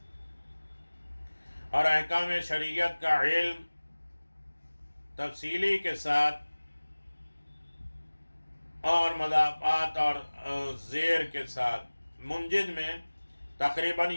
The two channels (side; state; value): both; inverted; correlation -1.00